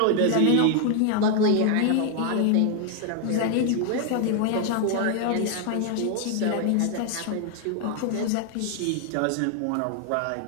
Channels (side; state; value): both; different; correlation 0.00